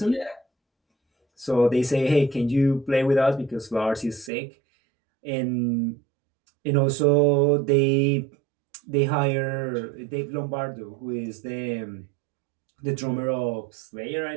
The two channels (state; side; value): drops out; left; at 4.3 s